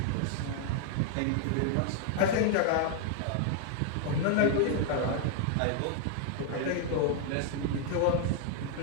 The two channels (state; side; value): different; both; correlation 0.00